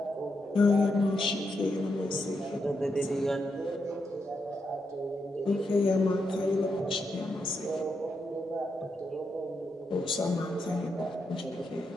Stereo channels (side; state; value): both; normal; correlation 0.83